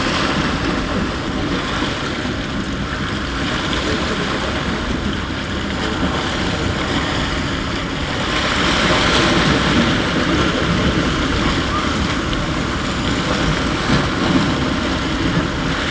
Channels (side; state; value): both; identical; correlation 1.00